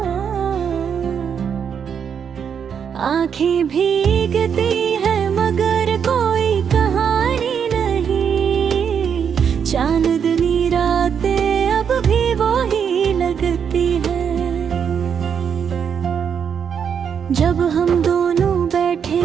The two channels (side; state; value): left; quieter; 7.4 dB